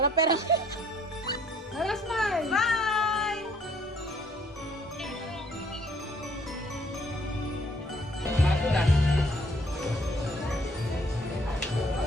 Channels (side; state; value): both; normal; correlation 0.62